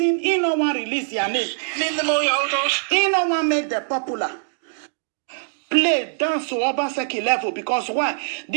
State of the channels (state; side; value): silent; left; digital silence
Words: he don't want to release their name. He don't want to make them popular. Play dance to Obaseki level because why?